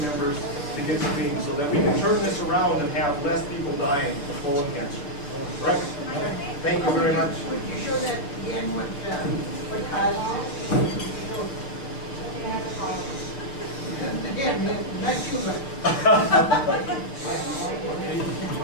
members to get screened so that we can turn this around and have less people dying of colon cancer. Correct? Thank you very much. Would you show that again, what caused it? Again, not too much.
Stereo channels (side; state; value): right; late; 6.9 ms